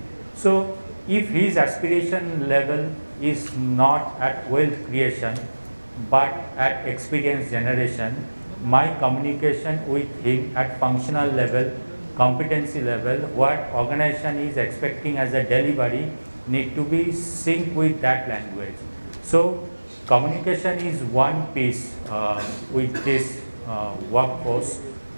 So if his aspiration level is not at wealth creation but at experience generation, my communication with him at functional level, competency level, what organization is expecting as a delivery need to be synced with that language. So communication is one piece with this workforce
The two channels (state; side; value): inverted; both; correlation -1.00